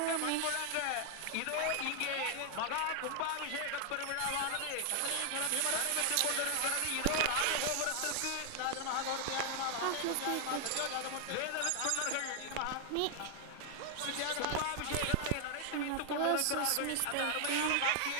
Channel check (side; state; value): both; different; correlation 0.00